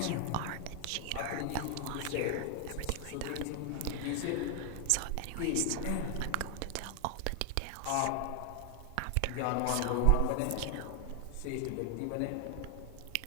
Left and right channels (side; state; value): both; different; correlation 0.00